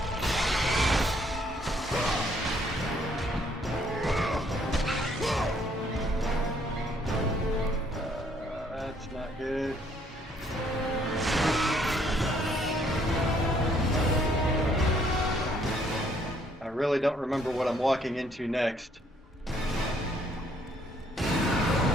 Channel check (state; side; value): normal; both; correlation 0.66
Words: That's not good. I really don't remember what I'm walking into next.